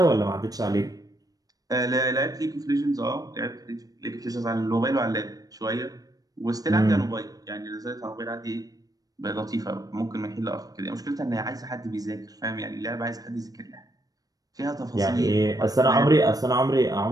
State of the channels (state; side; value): late; left; 0.18 ms